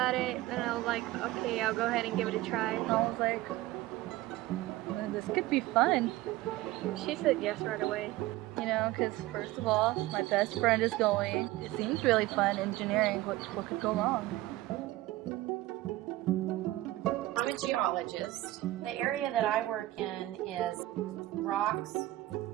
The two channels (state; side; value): quieter; left; 17.1 dB